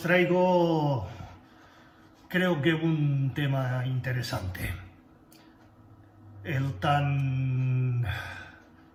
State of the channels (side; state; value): both; identical; correlation 1.00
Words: traigo, creo que un tema interesante. El tan